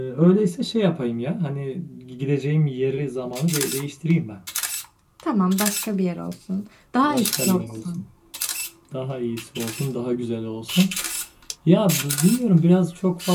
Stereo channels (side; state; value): both; identical; correlation 1.00